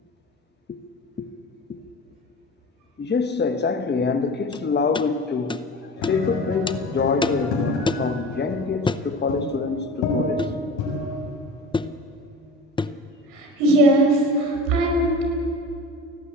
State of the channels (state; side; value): normal; both; correlation 0.35